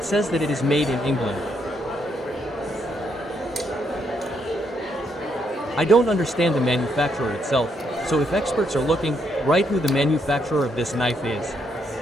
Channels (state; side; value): normal; both; correlation 0.75